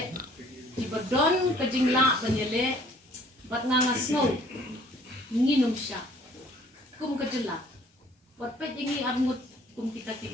tiba don ke jing la banyele bat ngasngau nginum sya kum ke jela bat pet jingi angut kum kita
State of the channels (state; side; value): normal; both; correlation 0.57